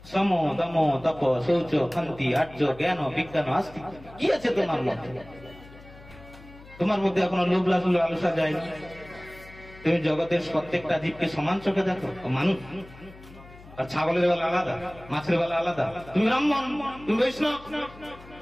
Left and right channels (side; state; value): left; noise; hum, 20 dB below the sound